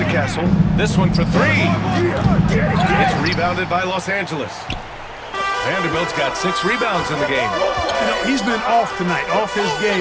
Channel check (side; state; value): both; identical; correlation 1.00